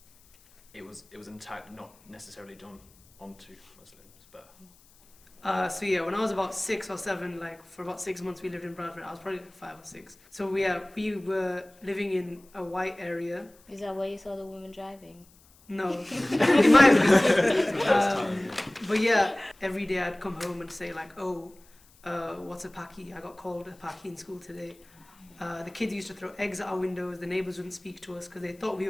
an attack not necessarily done onto Muslims. But So yeah, when I was about 6 or 7, like for about 6 months we lived in Bradford. I was probably like 5 or 6. So we were living in a white area. Is that where you saw the woman driving? No, it might have been. But yeah, every day I'd come home and say like, oh, what's a Paki? I got called a Paki in school today. The kids used to throw eggs at our windows. The neighbours wouldn't speak to us because they thought we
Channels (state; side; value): noise; left; hiss, 29 dB below the sound